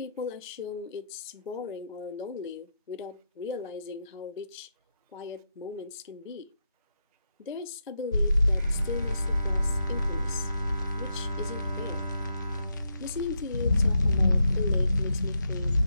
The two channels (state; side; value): inverted; both; correlation -0.82